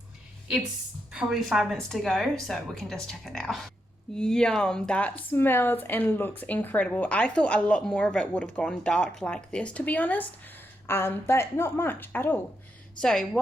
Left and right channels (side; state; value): both; normal; correlation 0.83